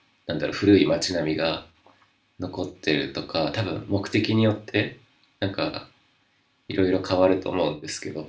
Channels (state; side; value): identical; both; correlation 1.00